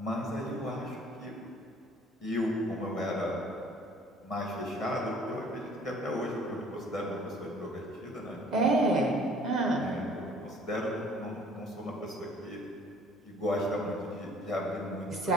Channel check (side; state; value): both; normal; correlation 0.55